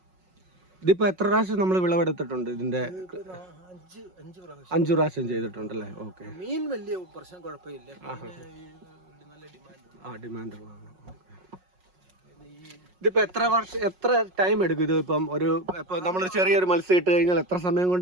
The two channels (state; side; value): late; left; 5.5 ms